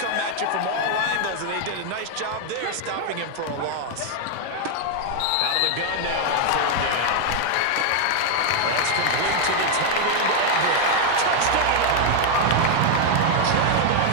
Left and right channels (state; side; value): different; both; correlation 0.00